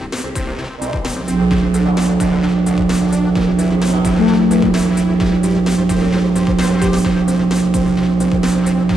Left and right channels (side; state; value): both; normal; correlation 0.86